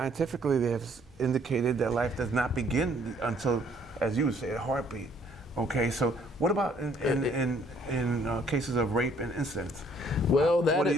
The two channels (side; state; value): both; normal; correlation 0.63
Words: they have indicated that life does not begin until, as you say, a heartbeat. Okay, so what about in cases of rape and incest? Well, What do